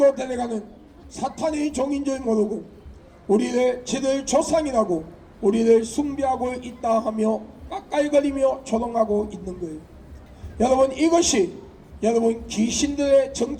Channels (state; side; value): identical; both; correlation 1.00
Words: 데려가는 사탄의 종인 줄 모르고 저들 조상이라고 우리를 숭배하고 있다 하며 깎아이거리며 조롱하고 있는 거예요. 여러분, 이것이 여러분 귀신들의